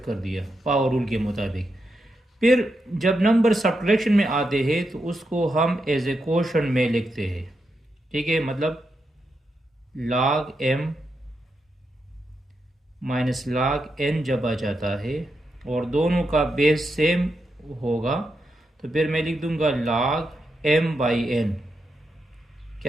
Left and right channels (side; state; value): both; normal; correlation 0.85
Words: कर दिया पावर रूल के मुताबिक। फिर जब नंबर सब्ट्रैक्शन में आते हैं तो उसको हम एज ए क्वोशंट में लिखते हैं। ठीक है, मतलब log m minus log n जब आ जाता है और दोनों का बेस सेम होगा तो फिर मैं लिख दूंगा log m/n,